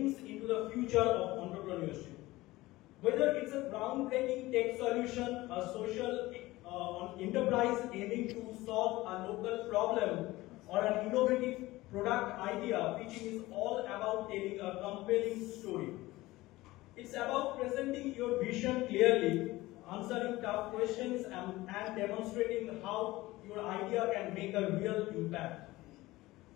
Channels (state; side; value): quieter; right; 18.8 dB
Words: into the future of entrepreneurship. Whether it's a groundbreaking tech solution, a social enterprise aiming to solve a local problem, or an innovative product idea, pitching is all about telling a compelling story. It's about presenting your vision clearly, answering tough questions, and demonstrating how your idea can make a real impact.